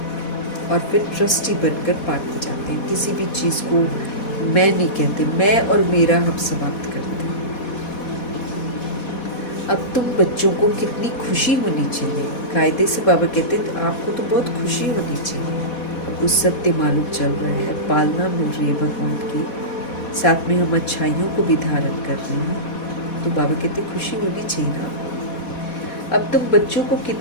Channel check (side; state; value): right; late; 4.1 ms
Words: और फिर ट्रस्टी बनकर बांटते जाते हैं। किसी भी चीज़ को मैं नहीं कहते, मैं और मेरा हम समाप्त करते हैं। अब तुम बच्चों को कितनी खुशी होनी चाहिए। कायदे से बाबा कहते हैं आपको तो बहुत खुशी होनी चाहिए। उस सत्य मालूम चल रहा है, पालना मिल रही है भगवान की, साथ में हम अच्छाइयों को भी धारण कर रहे हैं, तो बाबा कहते खुशी होनी चाहिए ना। अब तुम बच्चों को